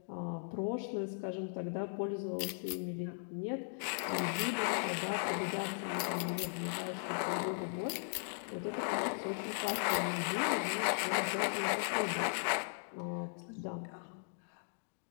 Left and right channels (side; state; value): right; silent; digital silence